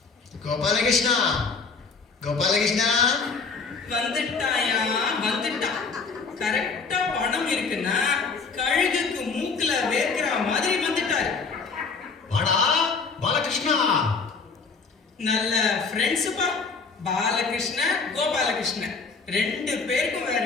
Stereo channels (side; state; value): right; quieter; 4.7 dB